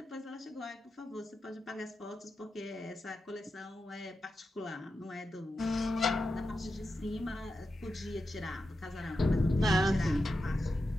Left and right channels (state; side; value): normal; both; correlation 0.89